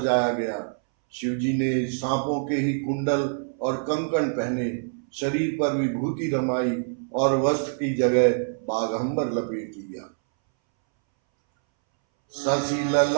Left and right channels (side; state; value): left; silent; 62 dB below the other